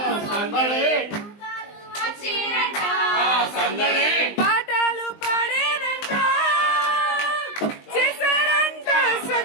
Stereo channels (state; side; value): late; right; 19 ms